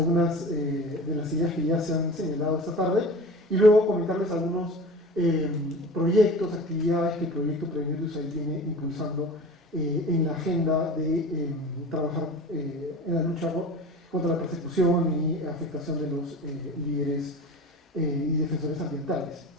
de las ideas que ya se han señalado esta tarde, y luego comentarles algunos proyectos, actividades que el proyecto Prevenir de USAID viene impulsando en la agenda de trabajar en la lucha contra la persecución y afectación de los líderes y defensores ambientales.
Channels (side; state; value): both; normal; correlation 0.36